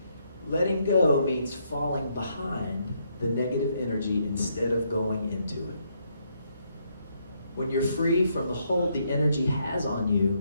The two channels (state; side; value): inverted; both; correlation -0.74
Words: Letting go means falling behind the negative energy instead of going into it. When you're free from the hold the energy has on you,